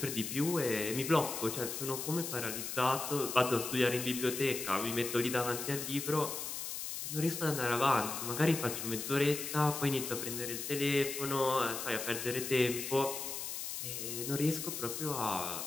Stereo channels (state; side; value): noise; left; hiss, 5 dB below the sound